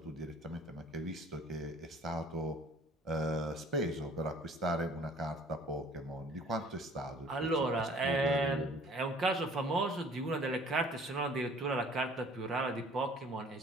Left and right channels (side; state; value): both; normal; correlation 0.52